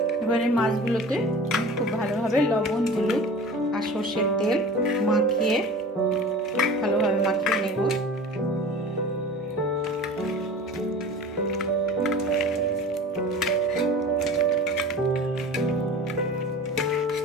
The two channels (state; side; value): normal; both; correlation 0.38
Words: এবারে মাছগুলোতে খুব ভালোভাবে লবণ, হলুদ আর সরষের তেল ভালোভাবে মাখিয়ে নেব।